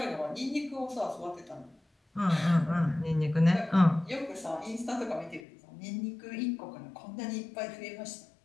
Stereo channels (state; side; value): drops out; right; at 5.4 s